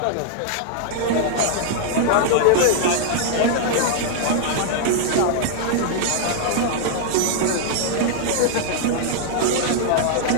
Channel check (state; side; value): different; both; correlation -0.01